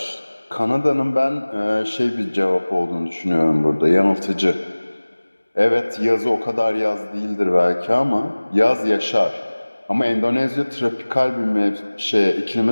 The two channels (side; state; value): both; inverted; correlation -1.00